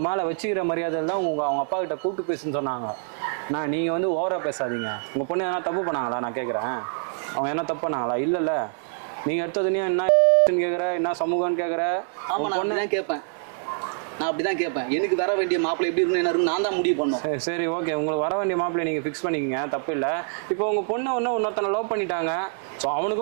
மேல வச்சுக்கிற மரியாதையில் தான் அவங்க அப்பா கிட்ட கூப்பிட்டு பேசுன்னு சொன்னாங்க. நீங்க வந்து ஓவரா பேசாதீங்க. உங்க பொண்ணு எதனா தப்பு பண்ணாங்களா? நான் கேட்குறேன், அவங்க என்ன தப்பு பண்ணாங்களா? இல்லைல்ல, நீங்க எடுத்ததுனே என்ன கேட்குற, என்ன சமூகம்னு கேட்குற? ஆமா, நான் அப்படிதான் கேட்பேன். நான் அப்படிதான் கேட்பேன். எனக்கு வர வேண்டிய மாப்பிள்ளை எப்படி இருக்கணும், என்ன இருக்கும், நான் தான் முடிவு பண்ணோம். சரி, ஓகே, உங்களுக்கு வர வேண்டிய மாப்பிள்ளை நீங்க ஃபிக்ஸ் பண்ணிக்கங்க, தப்பு இல்லை. இப்போ உங்க பொண்ணு இன்னொருத்தனை லவ் பண்ணிட்டாங்க. ஸோ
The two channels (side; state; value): left; silent; digital silence